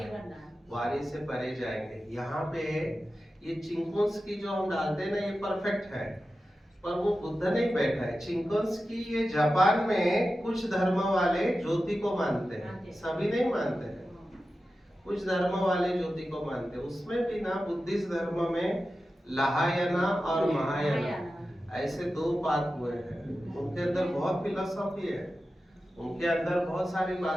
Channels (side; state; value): both; normal; correlation 0.93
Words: वाणी से परे जाएंगे। यहाँ पे ये चिंकोन्स्की जो हम डालते हैं ना, ये परफेक्ट है, पर वो बुद्ध नहीं बैठा है। चिंकोन्स्की ये जापान में कुछ धर्म वाले ज्योति को मानते हैं, सभी नहीं मानते हैं, कुछ धर्म वाले ज्योति को मानते हैं। उसमें भी ना बुद्धिस्ट धर्म में लहायाना और महायाना ऐसे दो पात हुए हैं। उनके अंदर बहुत फिलोसॉफी है, उनके अंदर बहुत सारी